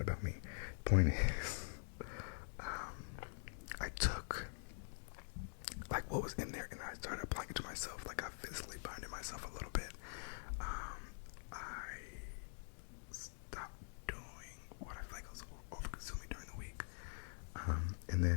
about me. Point is, I took like what was in there and I started applying it to myself. Like I physically binded myself a little bit. I stopped doing what I feel like I was over-consuming during the week. And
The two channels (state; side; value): silent; right; digital silence